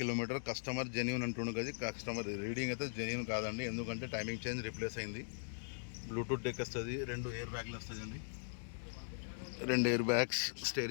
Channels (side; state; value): right; silent; digital silence